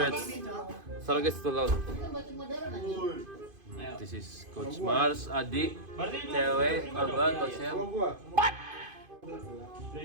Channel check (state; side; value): late; left; 2.5 ms